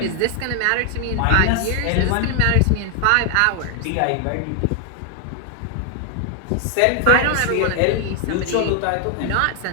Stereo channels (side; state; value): both; different; correlation 0.00